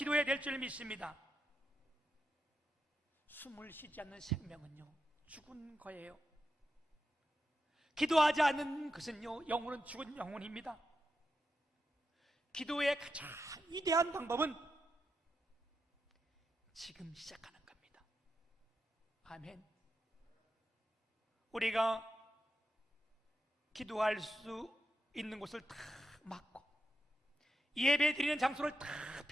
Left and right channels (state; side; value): normal; both; correlation 0.87